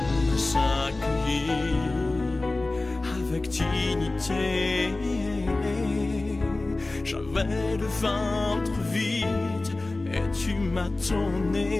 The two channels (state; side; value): quieter; right; 3.1 dB